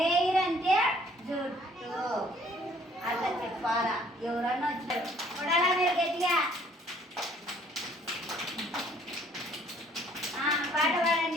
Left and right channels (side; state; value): both; normal; correlation 0.59